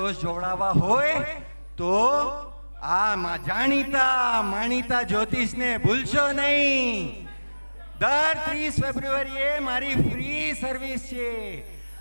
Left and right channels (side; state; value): both; inverted; correlation -1.00